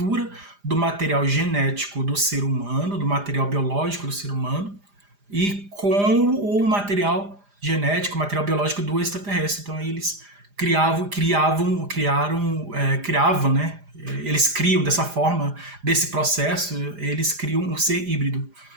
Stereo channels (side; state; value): left; late; 4.9 ms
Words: do material genético do ser humano, do material biológico do ser humano, e com o material genético, material biológico do extraterrestre. Então eles criavam, né? Eles criam dessa forma, desse processo, eles criam um ser híbrido,